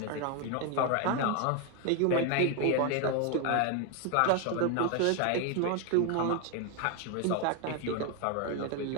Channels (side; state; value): both; different; correlation 0.01